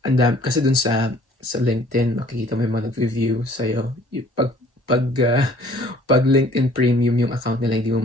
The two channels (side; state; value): both; normal; correlation 0.55